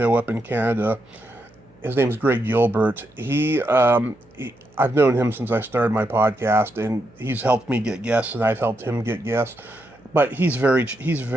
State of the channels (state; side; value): noise; right; hum, 29 dB below the sound